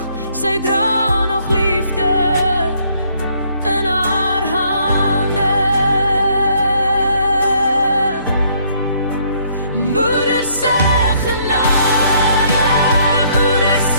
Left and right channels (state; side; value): inverted; both; correlation -0.66